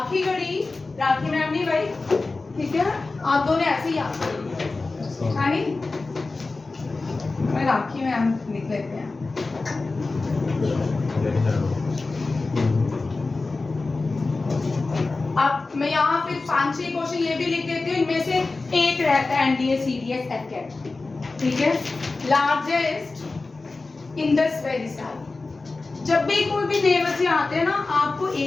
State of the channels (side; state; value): right; quieter; 3.6 dB